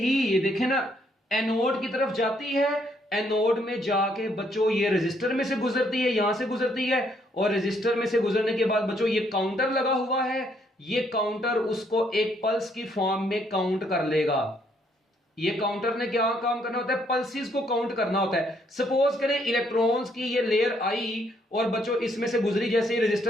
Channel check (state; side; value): normal; both; correlation 0.70